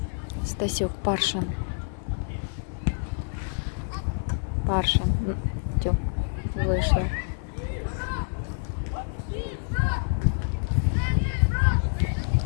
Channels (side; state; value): right; silent; digital silence